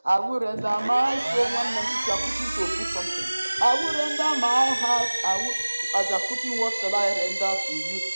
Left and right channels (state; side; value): inverted; both; correlation -1.00